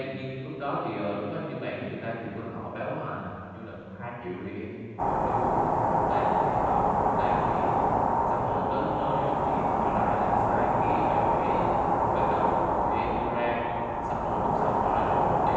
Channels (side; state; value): both; identical; correlation 1.00